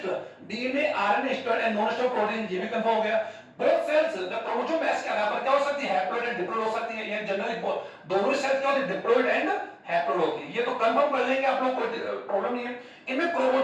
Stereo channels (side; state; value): both; identical; correlation 1.00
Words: DNA RNA store and non store protein, ये भी कंफर्म हो गया। Both cells the chromosomes के आधार पर क्या हो सकती है, हैप्लॉइड एंड डिप्लॉइड हो सकती है, ये जनरली दोनों सेल्स क्या होती है, डिप्लॉइड एंड हैप्लॉइड होती है, ये तो कंफर्म कर लेंगे आप लोग, कोई प्रॉब्लम नहीं है। इनमें